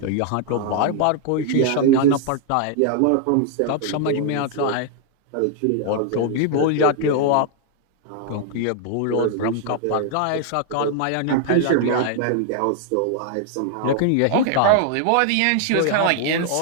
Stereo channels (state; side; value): different; both; correlation 0.00